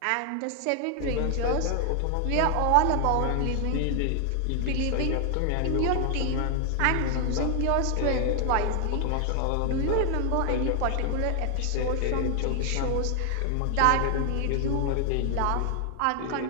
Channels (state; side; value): different; both; correlation 0.00